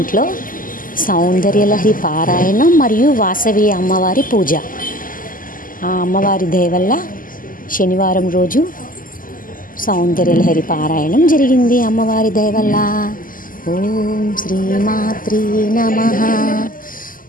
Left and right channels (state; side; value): late; right; 0.41 ms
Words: సౌందర్యలహరి పారాయణం మరియు వాసవి అమ్మవారి పూజ. ఆ అమ్మవారి దయ వల్ల శనివారం రోజు సౌందర్యలహరి పారాయణం జరిగింది. అమ్మవారి దయ వల్ల. ఓం శ్రీమాత్రే నమః.